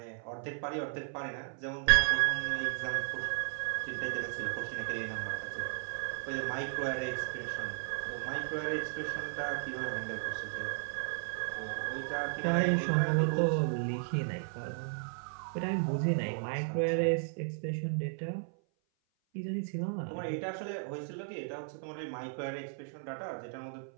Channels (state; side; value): silent; left; 55 dB below the other